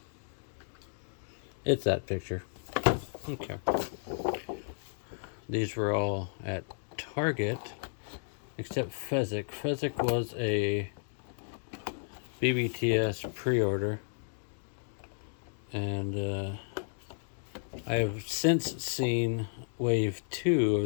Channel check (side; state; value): right; silent; digital silence